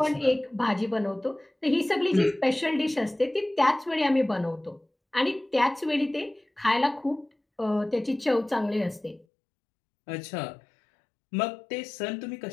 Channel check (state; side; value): drops out; right; at 9.2 s